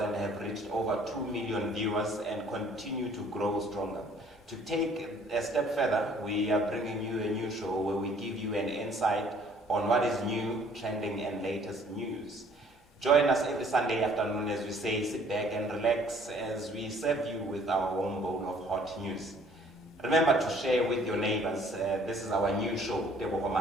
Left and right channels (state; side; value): normal; both; correlation 0.58